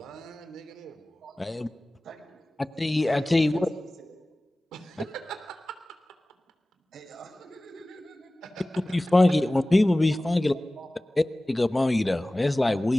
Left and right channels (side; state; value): both; normal; correlation 0.98